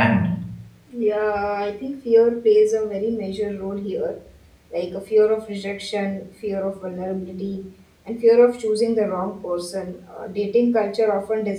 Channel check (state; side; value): identical; both; correlation 1.00